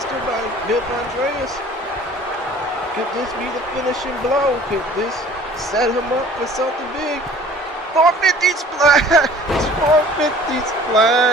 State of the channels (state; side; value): normal; both; correlation 0.49